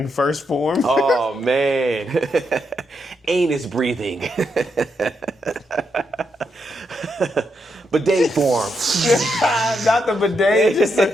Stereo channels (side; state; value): both; normal; correlation 0.81